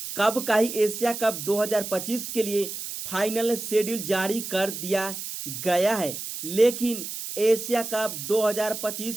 कब का ही एशिया कप 2025 के लिए फाइनल शेड्यूल जारी कर दिया गया है। लेकिन एशिया कप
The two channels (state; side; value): noise; right; hiss, 7 dB below the sound